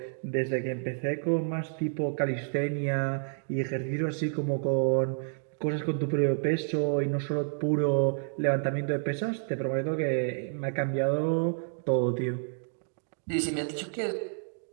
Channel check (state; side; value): silent; left; digital silence